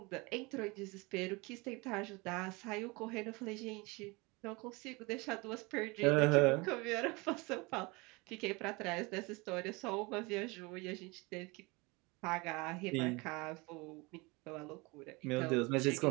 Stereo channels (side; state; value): left; quieter; 25.8 dB